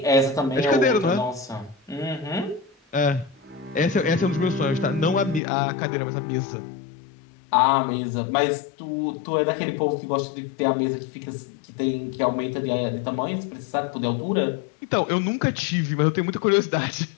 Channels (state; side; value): drops out; right; at 5.4 s